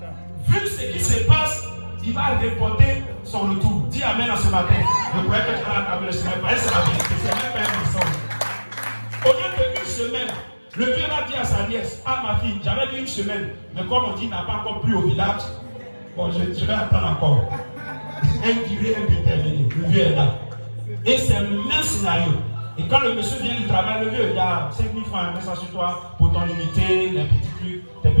vu ce qui se passe, il va reporter son retour. Dis amen en ce matin. Je crois que tu as la table, c'est la vérité, c'est même pas un mensonge. Au lieu d'une semaine, le vieux va dire à sa nièce, ah ma fille, j'avais dit une semaine, mais comme on dit, il n'a pas encore plu au village, bon, je vais attendre encore. Un durée indéterminée, le vieux est là. Et c'est le même scénario. Et quand le monsieur vient du travail, le vieux, il y a 5 000 francs, mets ça sur toi pour ton unité, les petits trucs, tes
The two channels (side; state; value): both; inverted; correlation -1.00